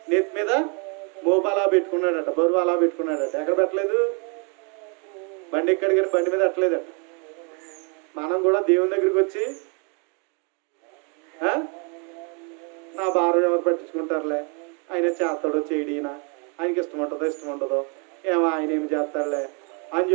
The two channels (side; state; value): left; quieter; 35.2 dB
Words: నెత్తి మీద మోపు అలా పెట్టుకున్నాడట, బరువు అలా పెట్టుకున్నాడట. ఎక్కడ పెట్టలేదు? బండి ఎక్కడికి బండి మీద పెట్టలేదట. మనం కూడా దేవుని దగ్గరికి వచ్చి నా భారం ఎవరు పట్టించుకుంటారులే, ఆయన చేస్తాడో చేయడీనా, ఆయనకి ఇష్టం ఉండదో ఏమో ఆయన ఏమి చేస్తాడులే అని